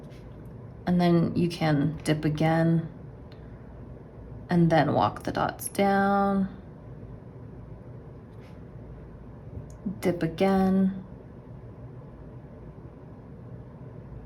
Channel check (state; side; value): identical; both; correlation 1.00